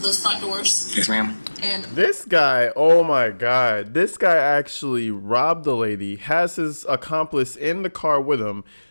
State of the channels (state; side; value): inverted; both; correlation -1.00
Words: those front doors? Yes, ma'am. And This guy, oh my God, this guy actually robbed the lady, has his accomplice in the car with him.